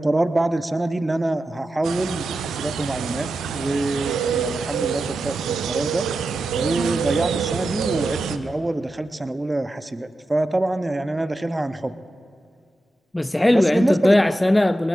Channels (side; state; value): both; normal; correlation 0.91